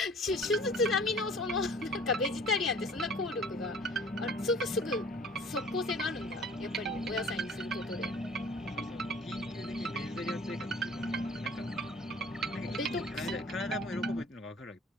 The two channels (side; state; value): both; normal; correlation 0.49